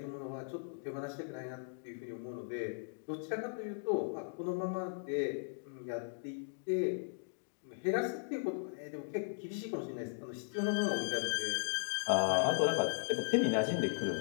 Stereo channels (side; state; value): right; silent; digital silence